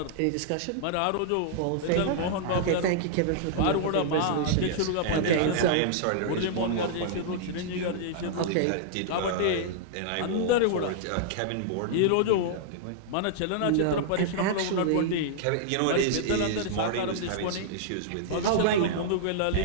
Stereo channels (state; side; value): different; both; correlation -0.01